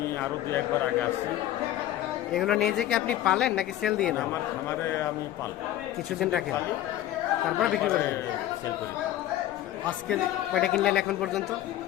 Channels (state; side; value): quieter; right; 13.3 dB